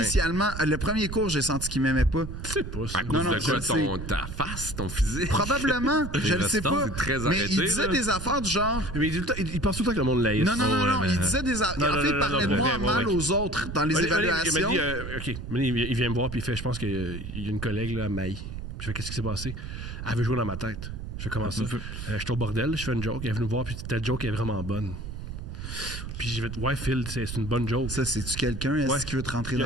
le premier cours, j'ai senti qu'il m'aimait pas. C'est pas ça. À cause non, de je quoi? le sais. Ta face, ton physique? Probablement, je le sais restants, pas. c'est très Mais arrêté, il disait là. des affaires du genre. Mais il pense tout le temps que le monde l'aïsse. Non, mais- il disait des affaires. Non, En non, fait, il non, parlait non, de moi ouais, mal ouais. aux autres dans les Il évaluations. m'a dit, OK, il vient me voir puis il fait, je pense qu'il y a une collègue là, à Maï. Je fais, qu'est-ce qui s'est passé? Elle veut jouer dans ma tête. Je fais, comment ça? Je suis au bordel, je fais une joke, elle est venue me voir puis ta joke est vraiment bonne. Puis j'ai fait, ouais, Phil, c'est une bonne joke. Ça, c'est-tu quelqu'un est-ce Ouais. qui veut te rentrer dans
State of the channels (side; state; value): right; noise; rumble, 8 dB below the sound